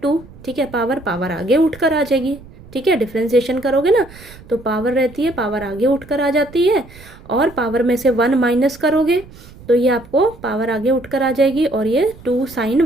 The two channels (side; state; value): right; noise; rumble, 20 dB below the sound